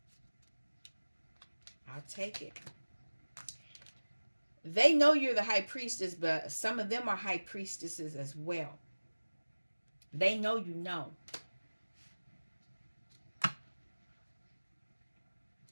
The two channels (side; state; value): both; inverted; correlation -1.00